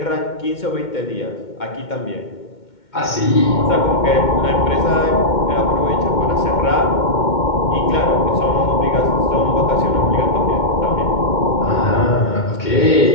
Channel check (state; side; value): late; right; 2.2 ms